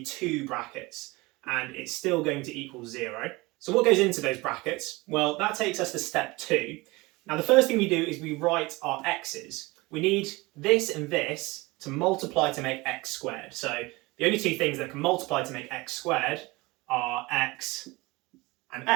2 brackets and it's still going to equal 0. So what goes into those brackets? Well, that takes us to step 2. Now, the first thing we do is we write our x's. We need this and this to multiply to make x squared. So the only 2 things that can multiply to make x squared are x and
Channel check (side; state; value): left; quieter; 22.8 dB